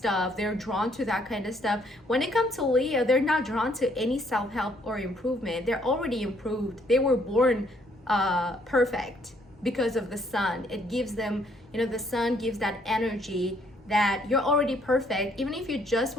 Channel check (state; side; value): normal; both; correlation 0.67